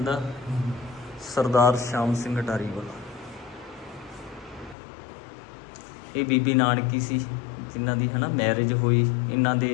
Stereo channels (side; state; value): right; drops out; at 4.8 s